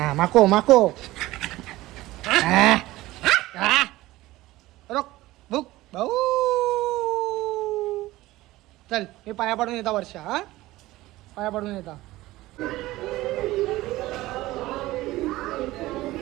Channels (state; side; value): quieter; left; 17.7 dB